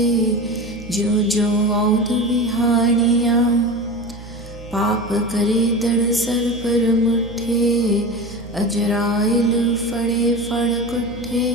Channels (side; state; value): right; noise; hum, 15 dB below the sound